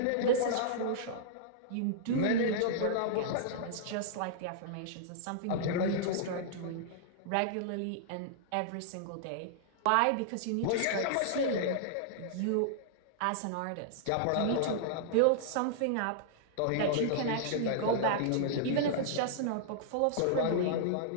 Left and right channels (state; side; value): different; both; correlation -0.02